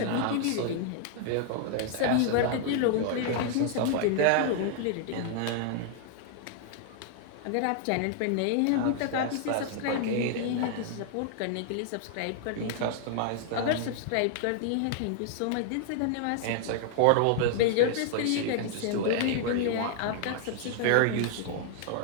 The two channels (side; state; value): both; different; correlation 0.00